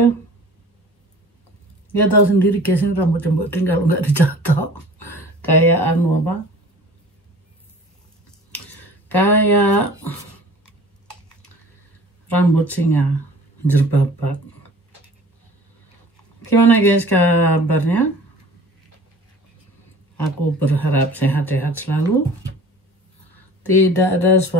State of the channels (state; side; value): normal; both; correlation 0.45